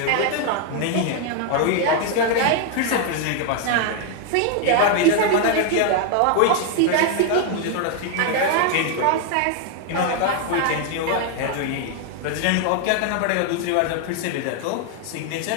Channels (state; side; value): different; both; correlation 0.00